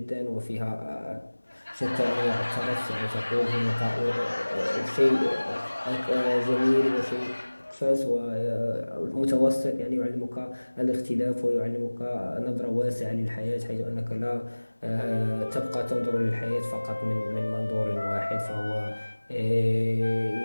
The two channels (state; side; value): inverted; both; correlation -1.00